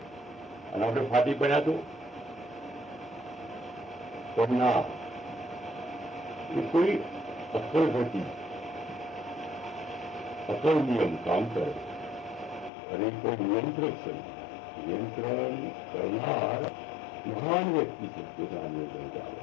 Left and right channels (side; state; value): right; drops out; at 12.7 s